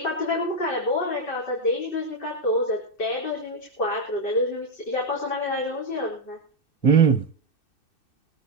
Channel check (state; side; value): late; right; 2.6 ms